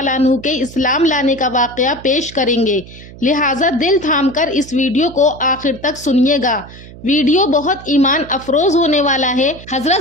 عنہ کے اسلام لانے کا واقعہ پیش کریں گے، لہٰذا دل تھام کر اس ویڈیو کو آخر تک سنیے گا۔ ویڈیو بہت ایمان افروز ہونے والا ہے۔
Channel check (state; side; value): noise; right; hum, 17 dB below the sound